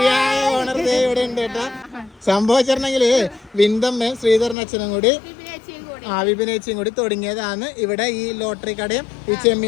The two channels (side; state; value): right; drops out; at 4.5 s